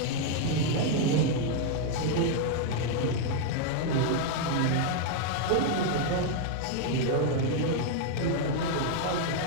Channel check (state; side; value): different; both; correlation 0.00